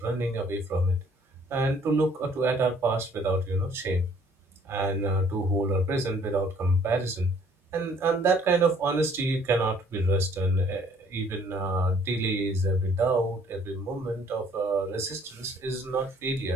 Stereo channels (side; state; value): both; normal; correlation 0.60